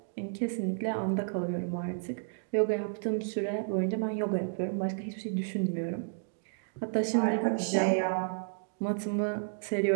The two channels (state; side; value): silent; left; digital silence